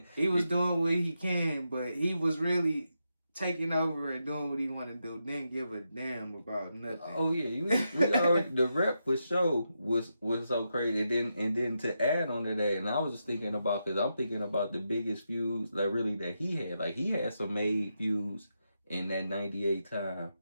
he was doing what he can, but he was really taking over and doing what he wanted to do. Didn't give a damn about nothing. Oh yeah, we already, the rep for show was so crazy. And then to add on to that, and I was just thinking about, because I'm thinking about the biggest feuds that he had. Like, he had some made feuds in that '98 time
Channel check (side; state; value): both; inverted; correlation -0.85